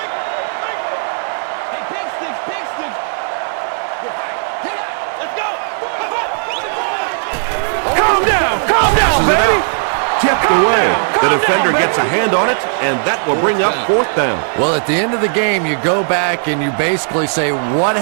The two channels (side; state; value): left; silent; digital silence